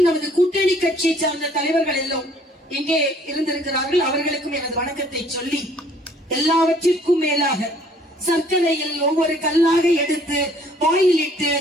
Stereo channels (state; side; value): normal; both; correlation 0.59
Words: நமது கூட்டணி கட்சியை சார்ந்த தலைவர்கள் எல்லாம் இங்கே இருந்திருக்கிறார்கள். அவர்களுக்கும் எனது வணக்கத்தை சொல்லி, எல்லாவற்றிற்கும் மேலாக சர்க்கரையில் ஒவ்வொரு கல்லாக எடுத்து வாயிலிட்டு